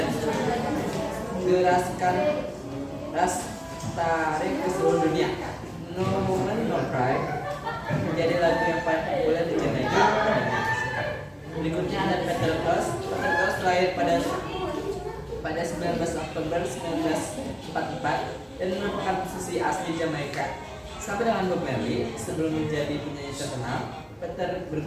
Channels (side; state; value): both; identical; correlation 1.00